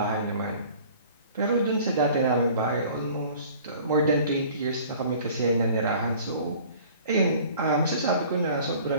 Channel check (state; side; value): inverted; both; correlation -0.49